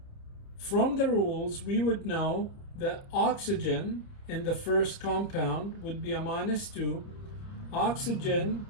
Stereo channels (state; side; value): late; right; 30 ms